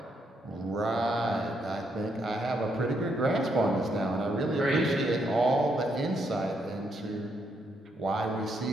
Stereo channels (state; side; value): normal; both; correlation 0.76